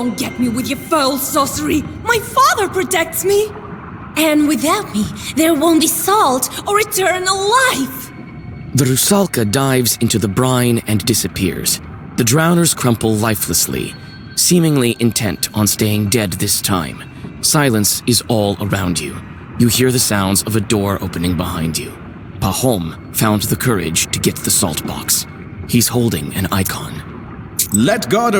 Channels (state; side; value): identical; both; correlation 1.00